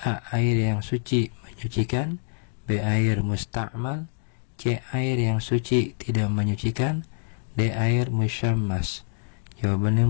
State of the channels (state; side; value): silent; right; digital silence